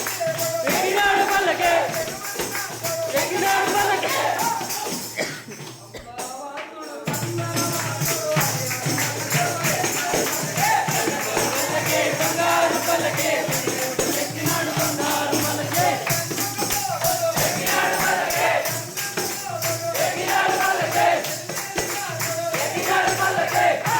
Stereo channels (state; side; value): identical; both; correlation 1.00